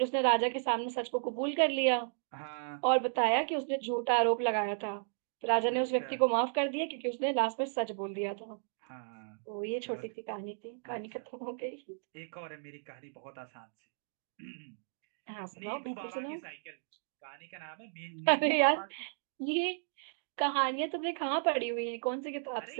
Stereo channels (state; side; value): silent; left; digital silence